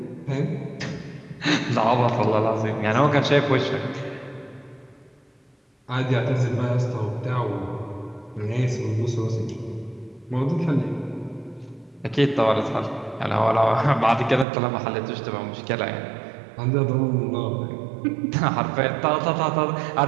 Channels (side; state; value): left; drops out; at 14.5 s